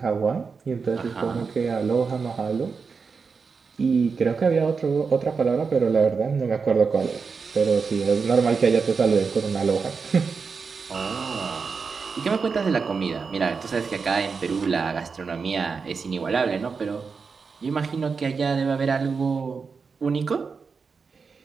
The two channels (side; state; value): left; quieter; 5.2 dB